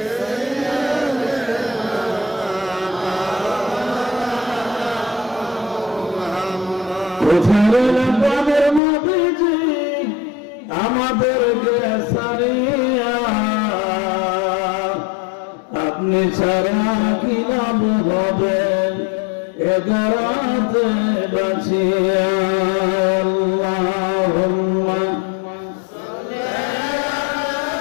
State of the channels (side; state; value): right; drops out; at 8.8 s